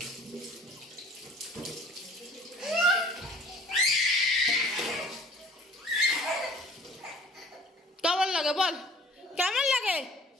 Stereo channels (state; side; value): normal; both; correlation 0.50